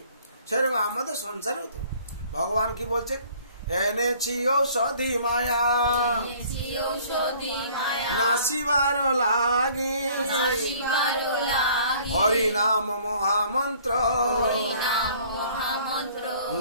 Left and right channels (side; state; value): both; inverted; correlation -0.55